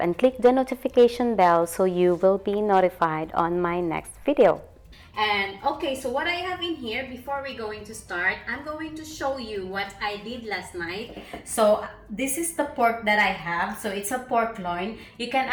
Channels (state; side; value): identical; both; correlation 1.00